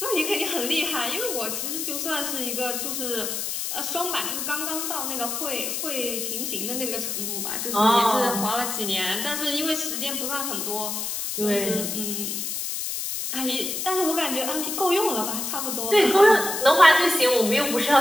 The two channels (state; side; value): noise; left; hiss, 3 dB below the sound